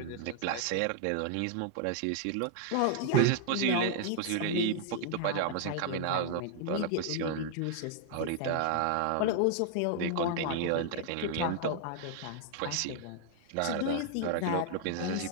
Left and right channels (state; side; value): different; both; correlation 0.00